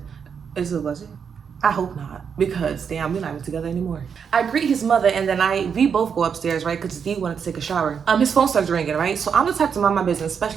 Was it? I hope not, because damn, we're not even together anymore. I greet his mother, and then we both go upstairs, right? Because D wanted to take a shower. His phone starts ringing, right? So I'm the type to mind my business,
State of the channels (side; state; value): left; quieter; 6.8 dB